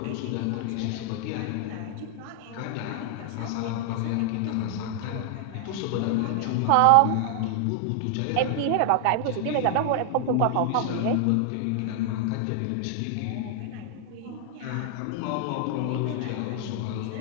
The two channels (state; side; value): different; both; correlation 0.00